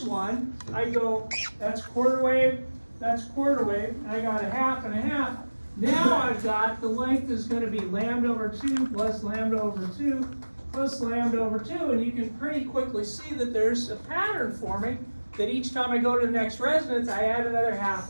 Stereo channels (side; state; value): both; inverted; correlation -1.00